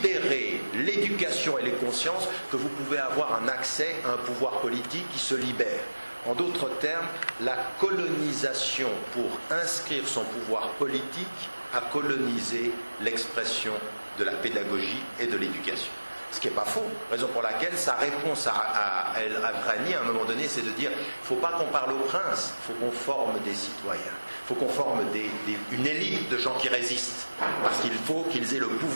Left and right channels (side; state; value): both; inverted; correlation -1.00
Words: l'éducation et les consciences que vous pouvez avoir un accès à un pouvoir politique qui se libère. En d'autres termes, la colonisation pour inscrire son pouvoir politique a colonisé l'expression de la pédagogie et de l'éducation. Ce qui n'est pas faux, raison pour laquelle sa réponse à El-Avrani à un moment donné, c'est de dire, il ne faut pas qu'on parle au prince, il faut qu'on forme des citoyens, il faut qu'on forme une élite de gens qui résistent, parce qu'il faut qu'ils aient le